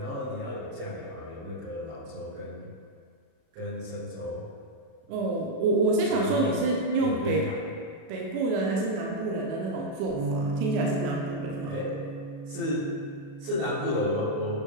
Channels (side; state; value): left; late; 37 ms